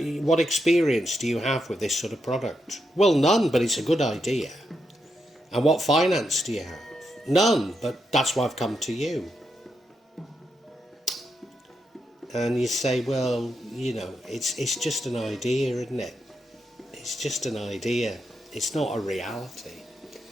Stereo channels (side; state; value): both; normal; correlation 0.83